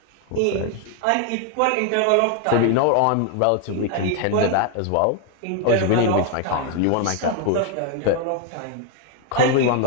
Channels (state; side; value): different; both; correlation 0.00